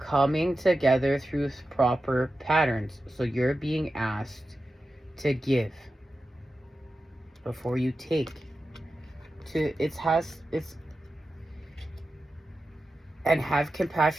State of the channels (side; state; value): both; normal; correlation 0.92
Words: together through proper patterns. So you're being asked to give before you take. And have